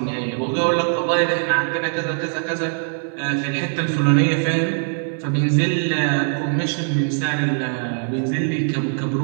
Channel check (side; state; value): left; silent; 60 dB below the other